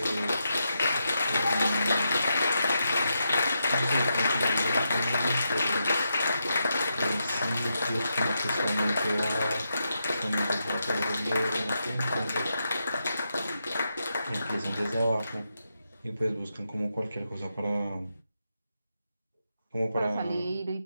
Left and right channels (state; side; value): inverted; both; correlation -0.84